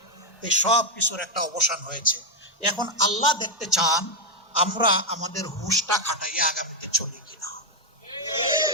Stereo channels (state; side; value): normal; both; correlation 0.01